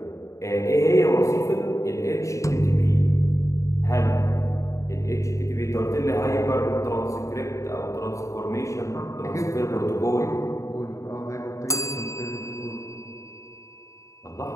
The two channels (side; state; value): right; late; 0.15 ms